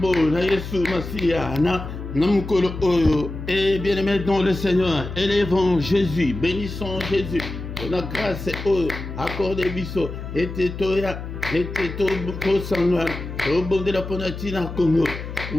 na Yesu Masia na Namukolo Oyo. Et bien-aimé dans le Seigneur, élevons Jésus, bénissons Jésus. Pour la grâce Oyo, accordez biso, et toya, et to sangwa, au bon de la Ponatina Congo.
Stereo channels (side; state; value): left; noise; hum, 8 dB below the sound